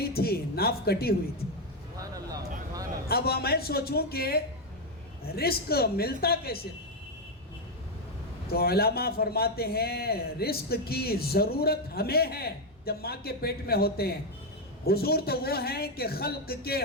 تھی, ناف کٹی ہوئی تھی. اب میں سوچوں کہ رزق ملتا کیسے؟ تو علماء فرماتے ہیں رزق کی ضرورت ہمیں ہے جب ماں کے پیٹ میں ہوتے ہیں. حضور تو وہ ہیں کہ خلق کے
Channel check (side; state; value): both; normal; correlation 0.05